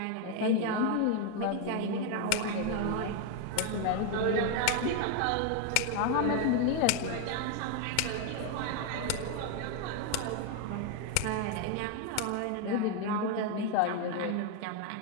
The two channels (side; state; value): both; different; correlation 0.01